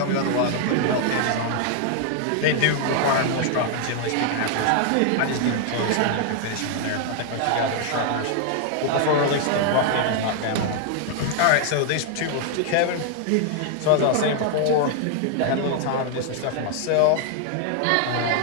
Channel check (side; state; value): both; different; correlation 0.00